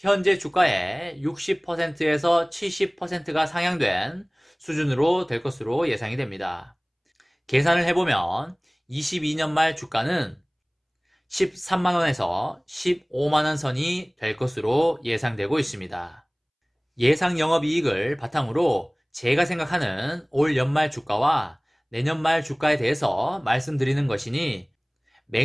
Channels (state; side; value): identical; both; correlation 1.00